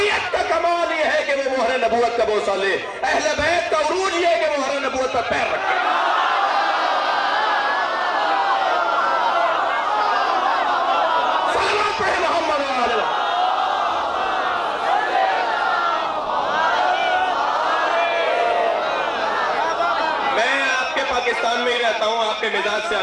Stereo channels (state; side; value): identical; both; correlation 1.00